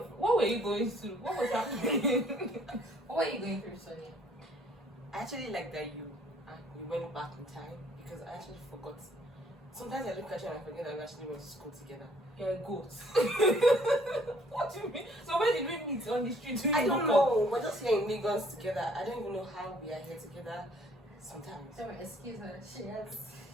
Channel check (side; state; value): both; normal; correlation 0.61